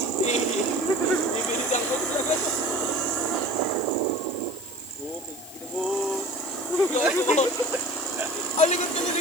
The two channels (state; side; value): noise; left; hiss, 17 dB below the sound